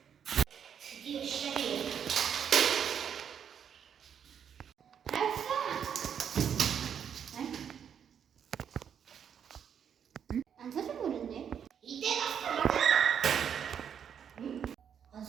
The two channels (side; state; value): left; quieter; 8.1 dB